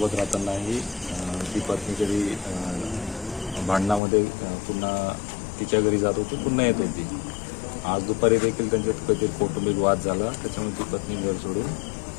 राहतानाही ती पत्नी कधी भांडणामध्ये पुन्हा तिच्या घरी जात होती, पुन्हा येत होती। आज दुपारी देखील त्यांच्यात काहीतरी कौटुंबिक वाद झाला, त्याच्यामुळे ती पत्नी घर सोडून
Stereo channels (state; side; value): drops out; right; at 4.0 s